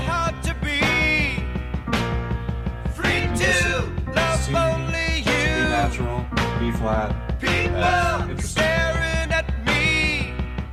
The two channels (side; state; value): both; identical; correlation 1.00